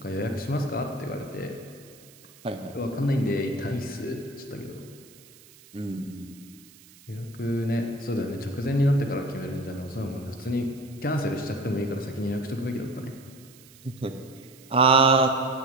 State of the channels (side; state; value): right; noise; hiss, 23 dB below the sound